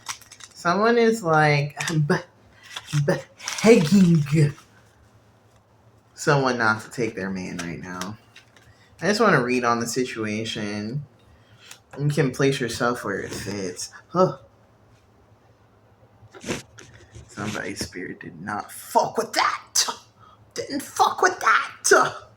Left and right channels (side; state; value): both; identical; correlation 1.00